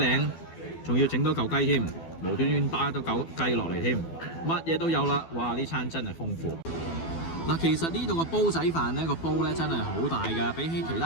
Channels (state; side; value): late; right; 12 ms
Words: 仲要整多嚿雞添，無端端打多嚿雞落嚟添，乜嘢都有啦！哇！呢餐真係豐富。嗱，其實呢度個煲仔飯呢個煲咧真係好大㗎，比起其